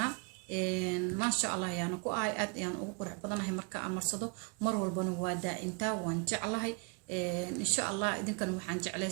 ما شاء الله يعني كو آد يعني وقرح بدنا هي مركا أمرصدو مر والبنا وادا إنتا وانجعلها إن شاء الله إذا كانوا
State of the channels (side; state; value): left; quieter; 31.1 dB